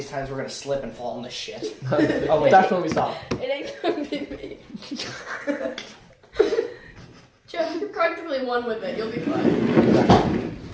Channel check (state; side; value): identical; both; correlation 1.00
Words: times we're gonna slip and fall in this shit. Oh, wait. That's when we stop. It ain't gonna be me. Jeff, you're cutting practically one with it. You'll be fine.